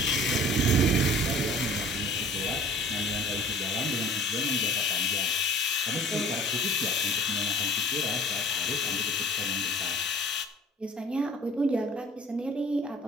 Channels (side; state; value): both; normal; correlation 0.48